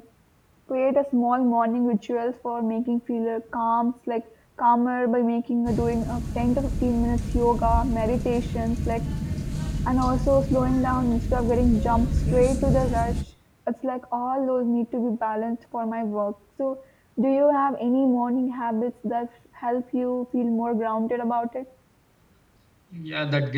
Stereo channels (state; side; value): identical; both; correlation 1.00